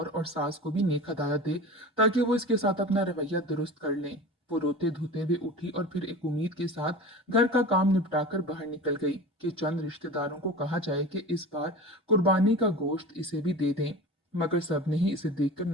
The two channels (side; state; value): both; normal; correlation 0.34